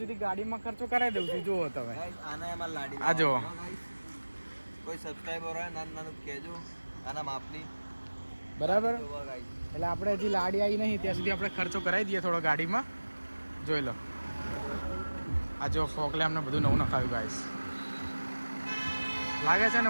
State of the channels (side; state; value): both; inverted; correlation -1.00